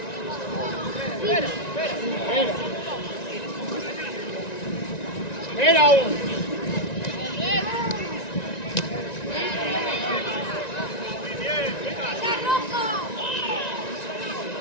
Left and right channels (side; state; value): right; late; 1.9 ms